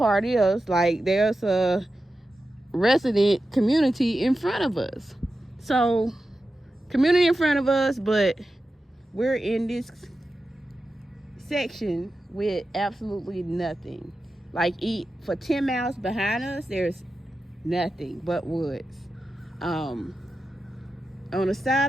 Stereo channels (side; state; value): both; normal; correlation 0.92